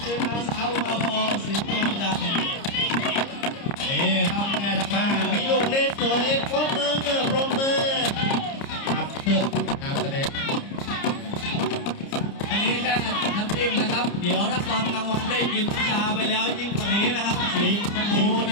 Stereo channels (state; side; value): late; right; 30 ms